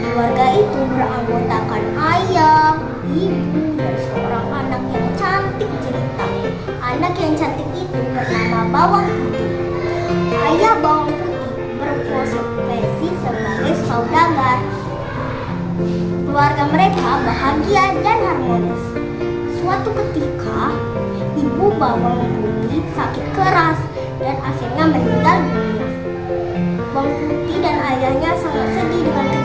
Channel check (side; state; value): both; identical; correlation 1.00